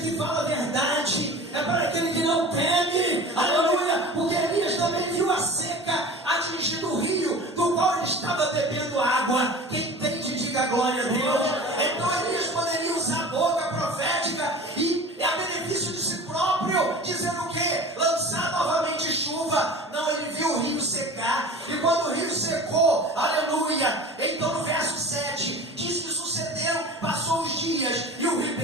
fala a verdade, é para aquele que não teme, aleluia, porque Elias também viu a seca atingindo o rio, do qual ele estava bebendo água. Quem entende, diga glória a Deus. Então Elias poderia usar a boca profética e a benefício de si próprio, dizendo o quê? Lançar novamente chuva. Não, ele viu o rio secar, e quando o rio secou, aleluia, então no verso 7, diz que sucederam, passou os dias, e o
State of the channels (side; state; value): both; normal; correlation 0.38